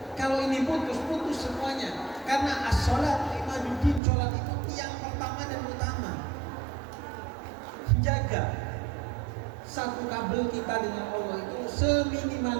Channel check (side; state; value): left; drops out; at 4.0 s